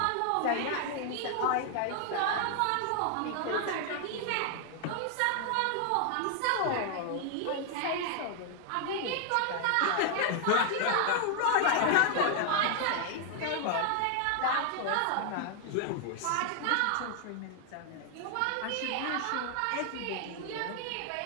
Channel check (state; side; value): different; both; correlation 0.00